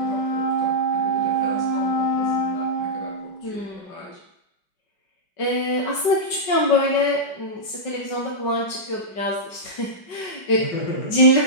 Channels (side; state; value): right; late; 5.3 ms